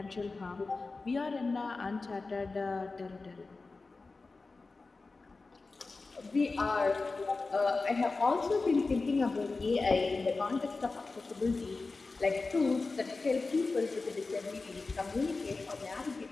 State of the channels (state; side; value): quieter; right; 3.8 dB